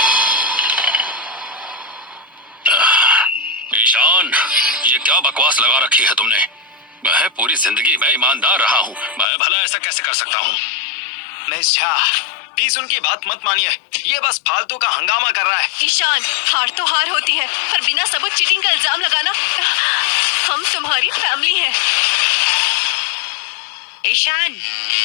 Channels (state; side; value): drops out; right; at 9.2 s